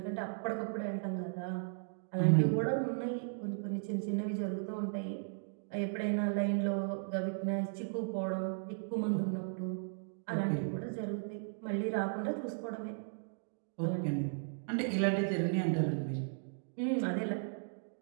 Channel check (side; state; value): left; silent; digital silence